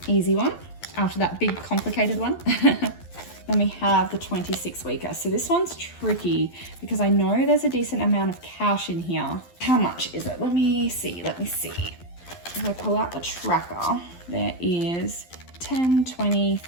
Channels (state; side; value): late; right; 12 ms